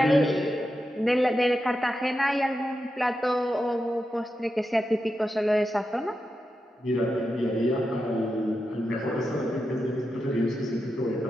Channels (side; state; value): both; normal; correlation 0.88